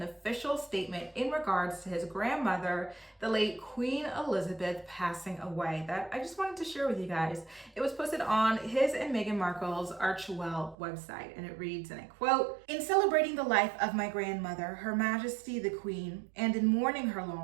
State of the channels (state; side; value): drops out; left; at 10.8 s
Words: official statement in regards to his grandmother, the late Queen Elizabeth, passing away that I just wanted to share with you guys. It was posted on his and Meghan Markle's Archewell website, and it reads, and I quote, "In celebrating the life of my grandmother, Her Majesty the Queen, and in mourning her